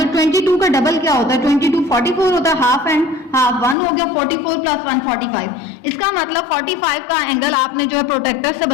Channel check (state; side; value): drops out; right; at 3.8 s